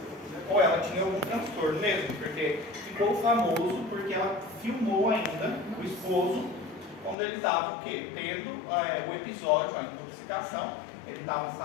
Ou ela tinha algum transtorno mesmo, porque ficou famoso porque ela filmou ainda o esposo quando ele estava o quê? Tendo o episódio, a intoxicação, ele estava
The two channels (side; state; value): right; drops out; at 7.2 s